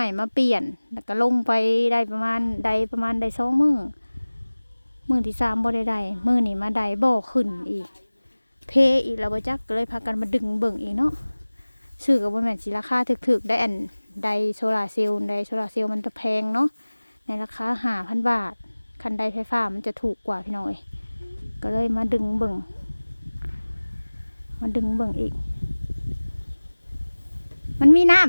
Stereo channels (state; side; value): inverted; both; correlation -1.00